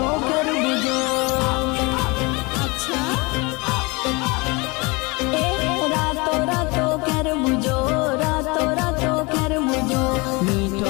कर बुझो अच्छा रातो रातो कर बुझो रातो रातो कर बुझो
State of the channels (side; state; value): right; quieter; 26.4 dB